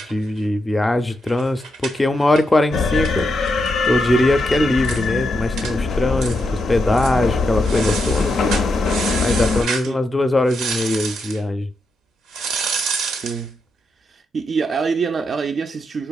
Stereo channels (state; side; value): normal; both; correlation 0.83